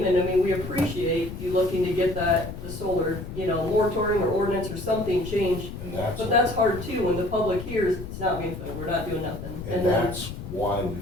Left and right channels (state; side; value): noise; left; rumble, 9 dB below the sound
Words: and I mean, we appreciate you looking to get the solar, moratorium or ordinance or something changed. And But that's hard too, when the public hears, it's not being filled, we're not doing nothing. and then- that's why we